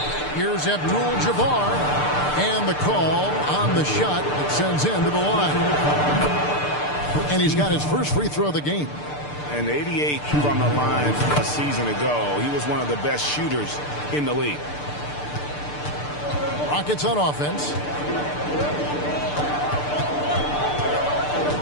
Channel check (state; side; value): late; right; 6.7 ms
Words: Here's Abdul-Jabbar. And the call on the shot that sends him to the line. And he's got his first free throw of the game. And 88 from the line a season ago. He was one of the best shooters in the league. Rockets on offense.